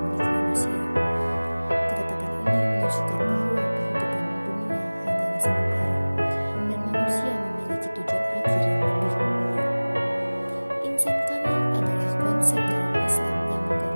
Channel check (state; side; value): inverted; both; correlation -1.00